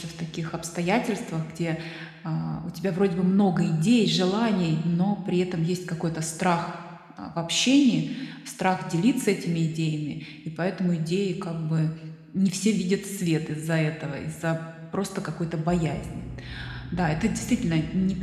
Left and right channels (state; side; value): identical; both; correlation 1.00